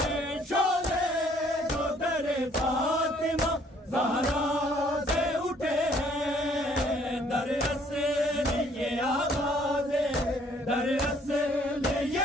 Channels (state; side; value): normal; both; correlation 0.62